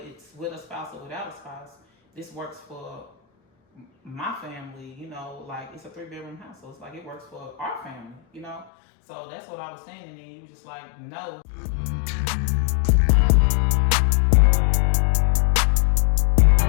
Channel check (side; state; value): right; drops out; at 8.7 s